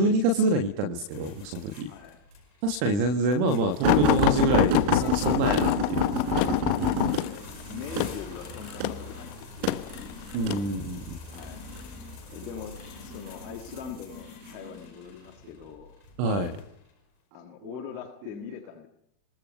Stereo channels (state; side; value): late; left; 40 ms